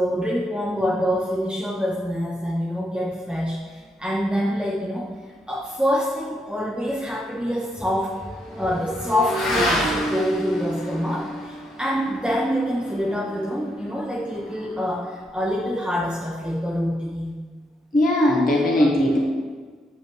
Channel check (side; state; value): both; normal; correlation 0.79